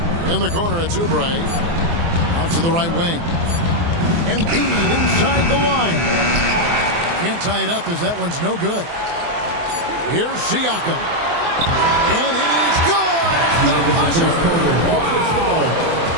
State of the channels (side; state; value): left; late; 24 ms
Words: In the corner, it's Oubre. Out to the right wing. Embiid inside the line. Can't tie it up as that one's no good. Here's Siakam. And it is good at the buzzer. Wow!